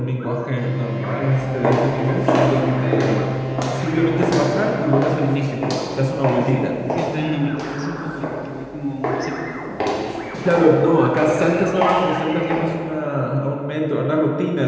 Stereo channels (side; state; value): both; identical; correlation 1.00